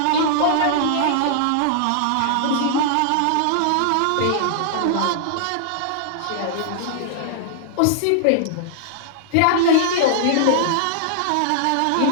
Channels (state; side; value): different; both; correlation -0.01